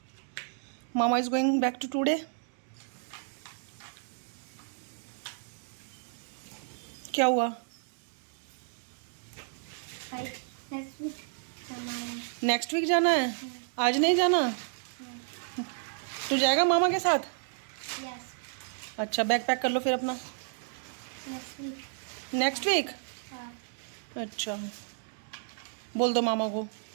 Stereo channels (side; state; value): left; silent; digital silence